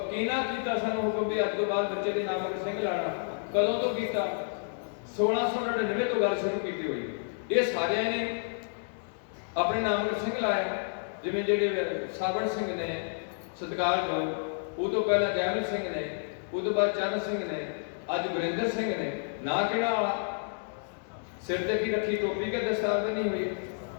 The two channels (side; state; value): right; silent; digital silence